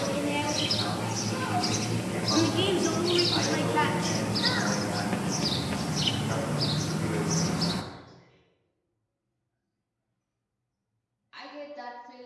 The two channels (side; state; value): both; identical; correlation 1.00